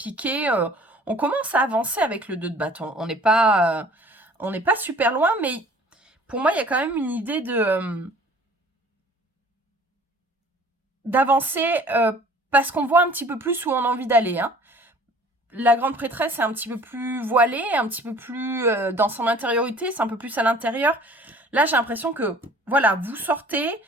On commence à avancer avec le 2 de bâton. On n'est pas super loin, mais pour moi il y a quand même une idée d'avancer parce qu'on voit un petit peu plus où on a envie d'aller. Hein. La grande prêtresse est un petit peu plus voilée, un petit peu plus dans son intériorité, c'est un peu plus à l'intérieur. Là, j'ai l'impression que, voilà, vous sortez,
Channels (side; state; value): both; normal; correlation 0.50